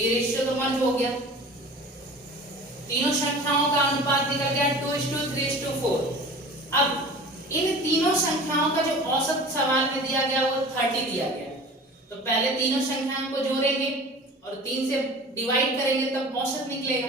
रेशियो तो मर्ज हो गया। तीनों संख्याओं का अनुपात निकल गया 2:3:4। अब इन तीनों संख्याओं का जो औसत सवाल में दिया गया वो 30 दिया गया। तो पहले तीनों संख्याओं को जोड़ेंगे और 3 से डिवाइड करेंगे तब औसत निकलेगा।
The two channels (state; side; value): normal; both; correlation 0.40